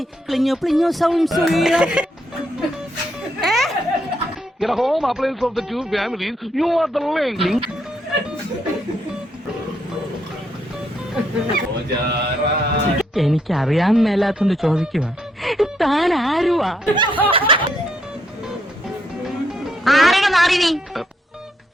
klinyo klinyo sound suya. Get a home appliance of the two families. You are the link. എനിക്കറിയാൻ മേലാത്തോണ്ട് ചോദിക്കുക, താൻ ആരുവാ?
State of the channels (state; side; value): normal; both; correlation 0.75